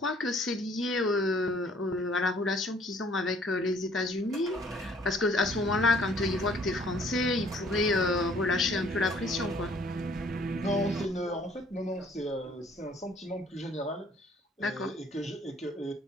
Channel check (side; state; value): both; normal; correlation 0.58